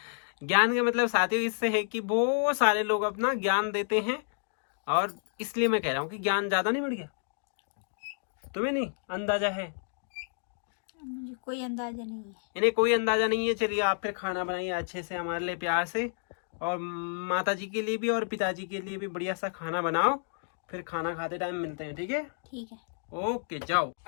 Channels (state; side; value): silent; right; digital silence